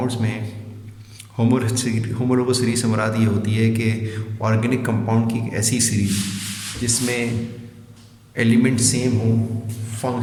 में होमोलोगस सीरीज से मुराद ये होती है कि ऑर्गेनिक कंपाउंड की एक ऐसी सीरीज जिसमें एलिमेंट सेम हो,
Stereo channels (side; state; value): both; identical; correlation 1.00